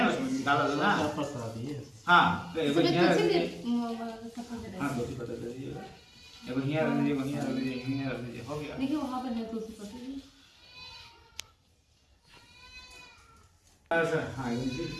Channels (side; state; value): both; identical; correlation 1.00